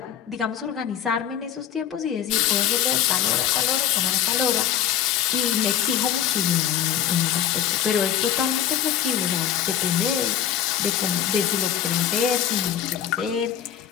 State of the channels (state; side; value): quieter; right; 10.2 dB